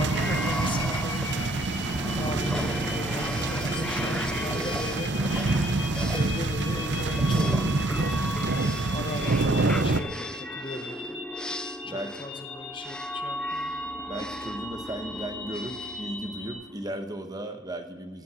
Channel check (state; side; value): normal; both; correlation 0.64